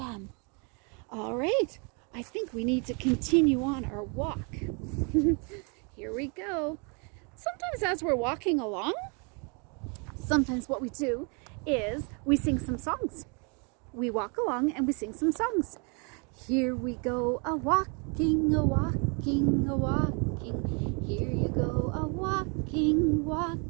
All right, I think we need to continue on our walk. Here we go. Sometimes as we're walking along, sometimes what we do is we sing some songs. We walk along and we sing some songs. Here we go a-walking, a-walking, a-walking. Here you go a-walking, walk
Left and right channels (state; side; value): quieter; left; 35.0 dB